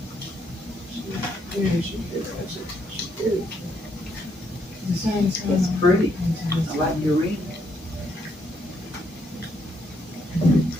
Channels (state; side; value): normal; both; correlation 0.74